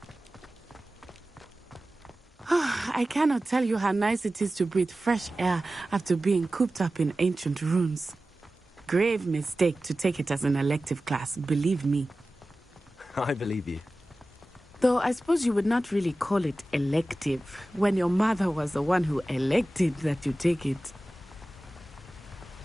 I cannot tell you how nice it is to breathe fresh air after being cooped up in ancient ruins. Grave mistake to take it as an elective class, believe me. I believe you. Though I suppose you would not really call it elective when your mother was the one who elected that you take it.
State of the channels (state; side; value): normal; both; correlation 0.95